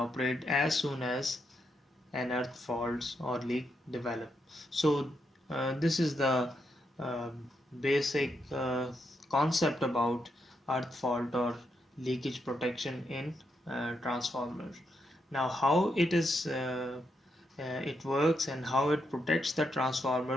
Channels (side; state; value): both; normal; correlation 0.81